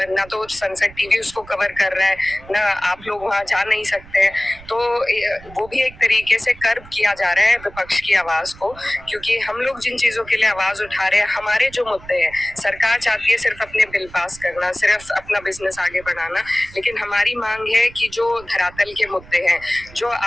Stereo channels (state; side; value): noise; right; rumble, 20 dB below the sound